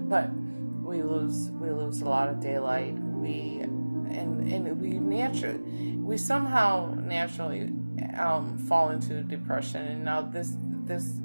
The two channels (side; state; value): both; inverted; correlation -1.00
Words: But we lose a lot of daylight. We somehow naturally fall into depression, and now this